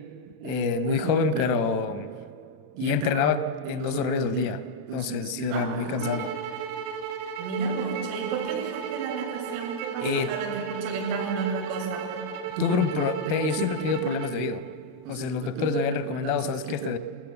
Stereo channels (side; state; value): left; late; 39 ms